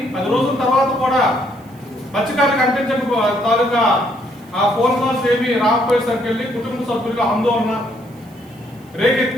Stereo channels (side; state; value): right; noise; hiss, 29 dB below the sound